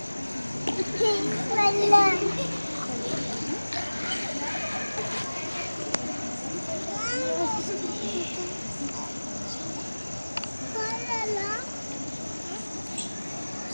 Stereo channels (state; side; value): inverted; both; correlation -1.00